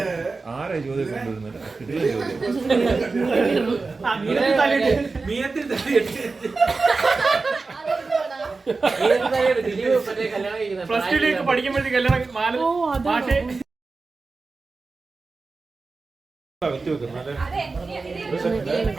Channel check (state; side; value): quieter; left; 4.0 dB